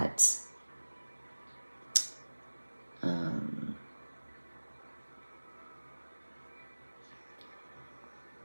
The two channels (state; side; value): inverted; both; correlation -1.00